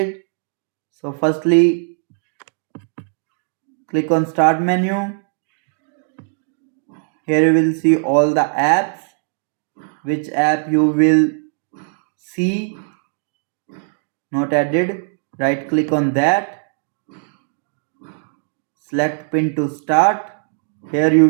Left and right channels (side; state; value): left; silent; digital silence